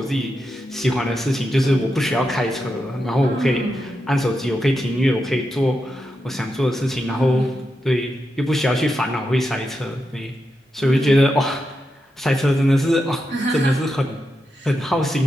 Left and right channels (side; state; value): both; normal; correlation 0.87